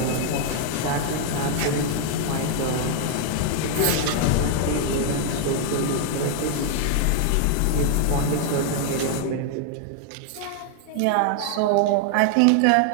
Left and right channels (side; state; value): both; different; correlation 0.00